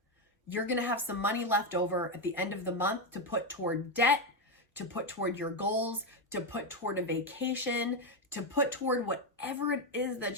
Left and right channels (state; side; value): normal; both; correlation 0.08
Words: you're gonna have some money left over at the end of the month to put toward debt, to put toward your goals, to put toward a vacation, to put toward whatever it is